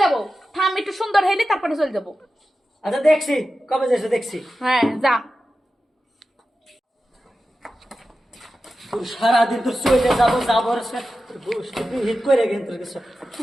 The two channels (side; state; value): both; normal; correlation 0.92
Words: যাবো, থাম একটু সুন্দর হইলে তারপরে চল যাবো। আচ্ছা দেখছি, কবে যাচ্ছে দেখছি। হ্যাঁ যা। তোর সারাদিন তোর চলে যাবো যাবো হিট করে কিন্তু কিছু।